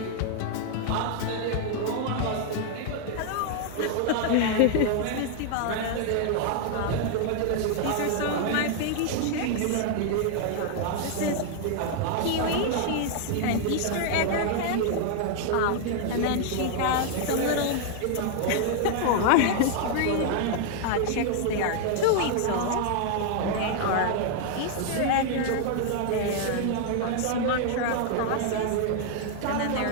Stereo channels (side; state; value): both; different; correlation 0.00